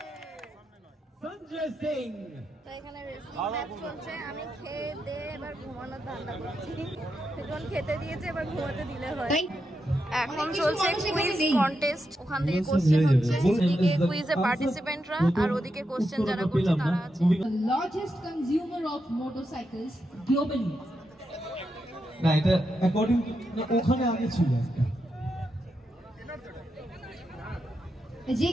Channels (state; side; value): normal; both; correlation 0.85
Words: Sanjay Singh. তো এখানে রেসলিং ম্যাচ চলছে, আমি খেয়ে দিয়ে এবার ঘুমানোর ধান্দা করছি। এখন খেতে দিয়েছে, এবার ঘুমাতে দিলে হয়। এখন চলছে কুইজ কন্টেস্ট, ওখান থেকে কোশ্চেন হচ্ছে, এদিকে কুইজে পার্টিসিপেন্টরা আর ওদিকে কোশ্চেন যারা করছে তারা আছে। The largest consumer of motorcycles globally. না এটা অ্যাকর্ডিং ওখানে আগে ছিল একটা। যে